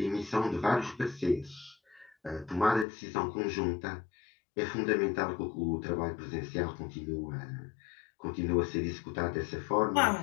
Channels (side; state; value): right; drops out; at 2.9 s